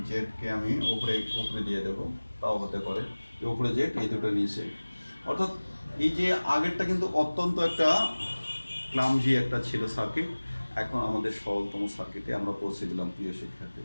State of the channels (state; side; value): inverted; both; correlation -1.00